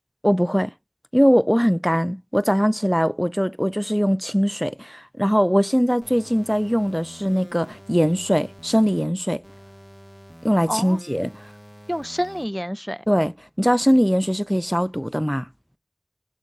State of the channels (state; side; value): identical; both; correlation 1.00